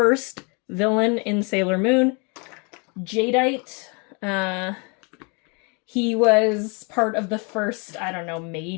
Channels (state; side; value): quieter; right; 32.9 dB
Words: villain in Sailor Moon. Jadeite. He was part of the first, I don't know,